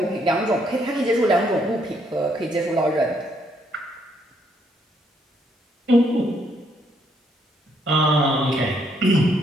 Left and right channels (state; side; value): normal; both; correlation 0.71